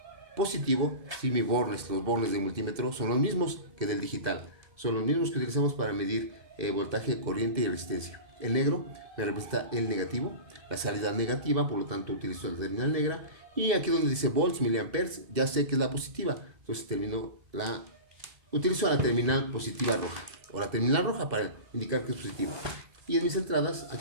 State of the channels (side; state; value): left; late; 2.0 ms